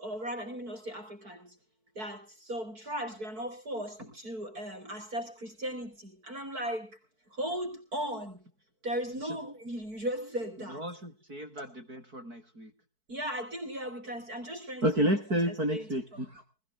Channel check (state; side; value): late; left; 4.6 ms